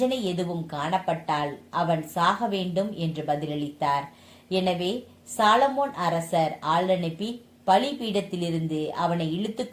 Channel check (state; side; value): identical; both; correlation 1.00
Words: எதுவும் காணப்பட்டால் அவன் சாக வேண்டும் என்று பதிலளித்தார். எனவே சாலமோன் அரசர் ஆள் அனுப்பி பலிபீடத்திலிருந்து அவனை இழுத்து